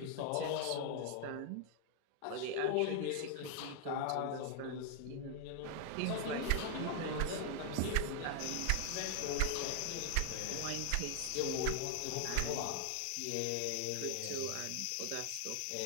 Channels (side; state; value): both; different; correlation 0.00